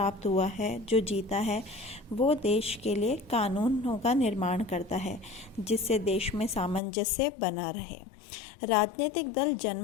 हुआ है, जो जीता है, वो देश के लिए कानूनों का निर्माण करता है जिससे देश में सामंजस्य बना रहे। राजनीतिक दल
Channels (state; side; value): drops out; right; at 6.8 s